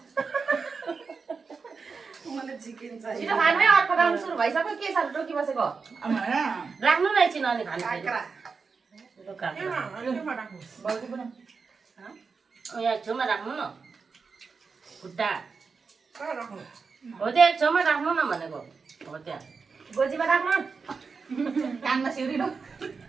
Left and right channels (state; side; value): quieter; left; 5.0 dB